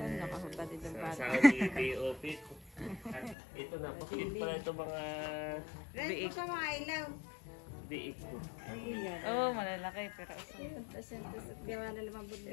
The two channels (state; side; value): drops out; right; at 3.4 s